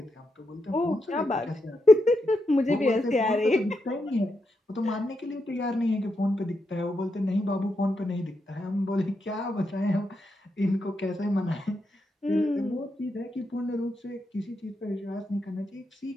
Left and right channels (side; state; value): both; normal; correlation 0.84